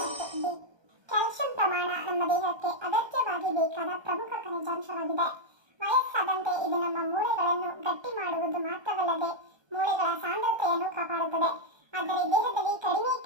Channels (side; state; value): left; late; 1.3 ms